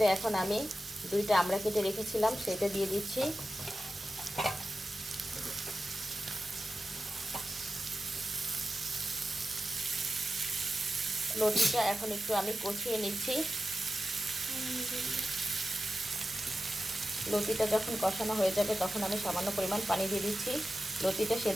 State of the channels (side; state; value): both; normal; correlation 0.93